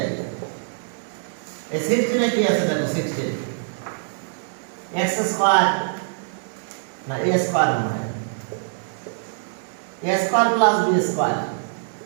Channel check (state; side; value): silent; left; digital silence